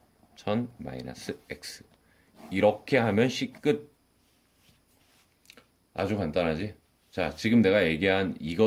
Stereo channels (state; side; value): identical; both; correlation 1.00